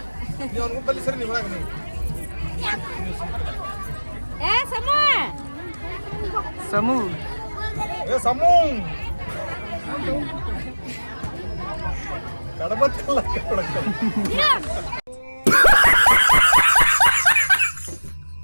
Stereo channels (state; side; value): inverted; both; correlation -1.00